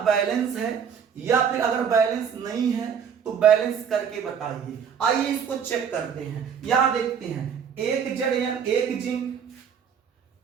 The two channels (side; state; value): left; quieter; 7.5 dB